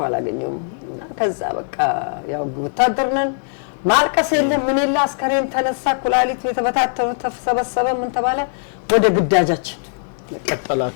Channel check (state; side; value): silent; right; digital silence